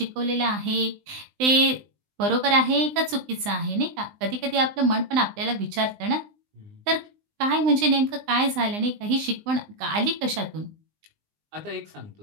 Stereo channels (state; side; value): late; left; 19 ms